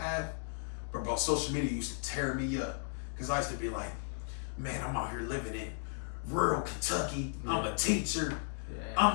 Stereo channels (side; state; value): right; silent; digital silence